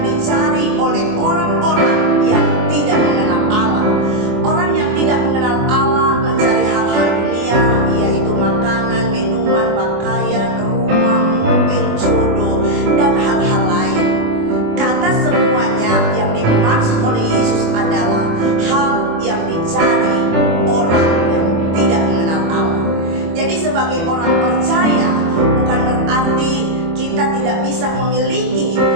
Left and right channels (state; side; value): late; left; 24 ms